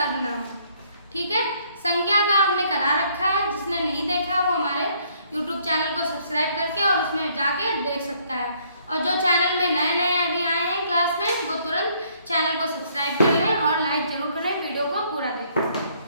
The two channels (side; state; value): both; inverted; correlation -0.65